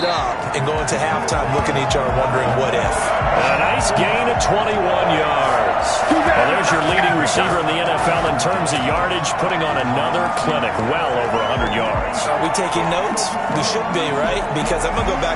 up and go into halftime looking at each other wondering what if. A nice gain of 21 yards. Well, there's your leading receiver in the NFL in terms of yardage, putting on another clinic, well over 100 yards. Are we taking notes? We should be, right? Because I'm going to go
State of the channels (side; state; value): both; identical; correlation 1.00